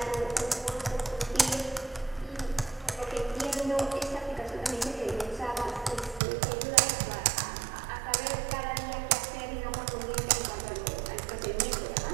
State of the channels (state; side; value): drops out; left; at 6.2 s